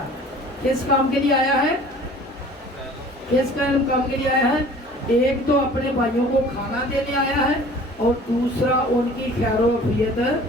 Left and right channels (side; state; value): both; normal; correlation 0.47